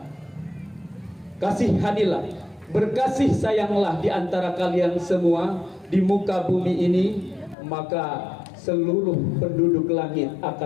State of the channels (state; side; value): drops out; right; at 7.6 s